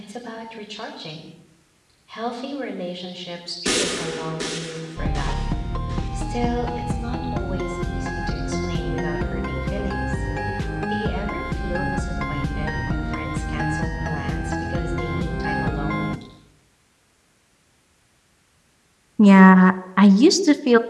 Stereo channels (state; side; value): identical; both; correlation 1.00